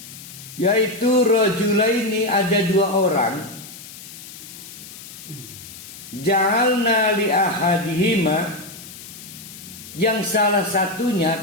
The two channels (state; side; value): noise; left; hiss, 15 dB below the sound